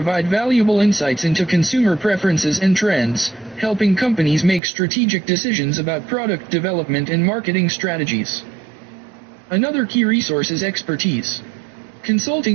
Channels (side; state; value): left; drops out; at 4.6 s